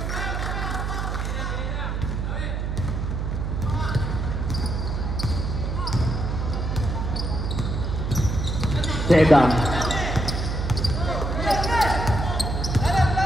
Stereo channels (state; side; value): noise; right; hum, 2 dB below the sound